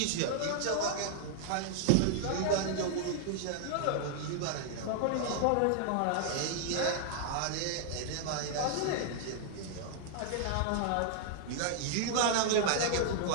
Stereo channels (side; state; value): both; different; correlation -0.01